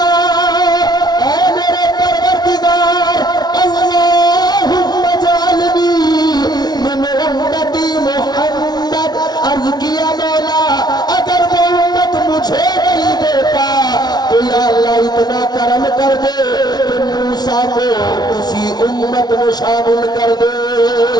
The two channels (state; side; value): late; right; 0.19 ms